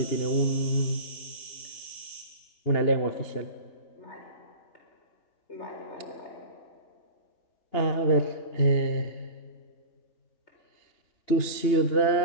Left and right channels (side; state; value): right; late; 2.9 ms